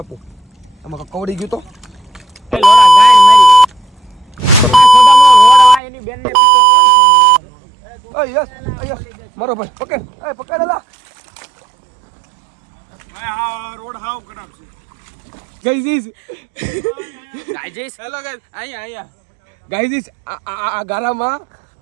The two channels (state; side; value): drops out; left; at 5.8 s